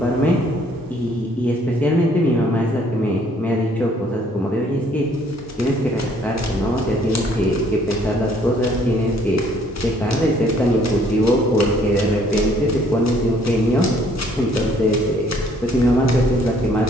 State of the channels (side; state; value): both; normal; correlation 0.62